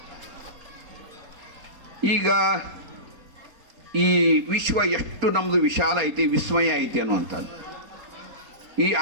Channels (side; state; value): left; late; 4.3 ms